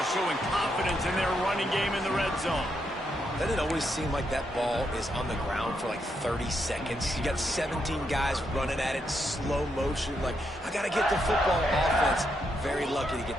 showing confidence in their running game in the red zone. Doesn't it always seem like that ball is on the ground for like 30 seconds? You got 17 guys running at it, slow motion. Like, I got to get the football. Offense, very lucky to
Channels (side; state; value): both; normal; correlation 0.80